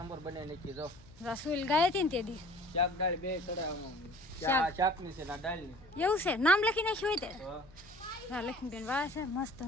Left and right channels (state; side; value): noise; left; hum, 23 dB below the sound